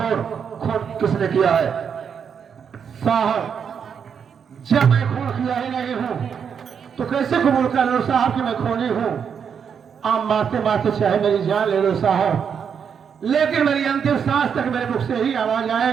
खून किसने किया है? साहब जब मैं खून किया ही नहीं हूँ तो कैसे कबूल कर लो साहब कि मैं खूनी हूँ? आप मारते मारते चाहे मेरी जान ले लो साहब, लेकिन मेरी अंतिम सांस तक मेरे मुख से ही आवाज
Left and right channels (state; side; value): quieter; left; 7.1 dB